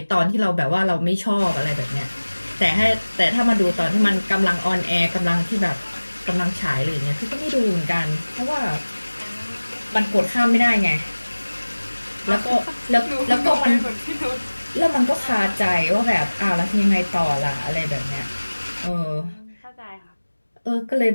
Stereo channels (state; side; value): inverted; both; correlation -1.00